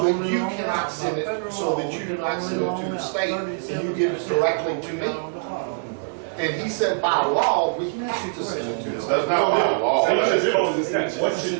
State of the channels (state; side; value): silent; left; 60 dB below the other